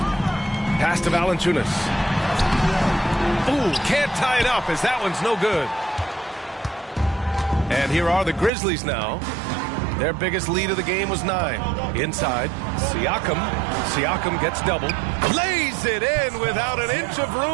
Pass to Valanciunas. Ooh, can't tie it up as that one's no good. And here are the Grizzlies now. Their biggest lead of the game was 9. Inside, Siakam. Siakam gets doubled. Lays it in without an inch of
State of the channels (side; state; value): left; drops out; at 8.5 s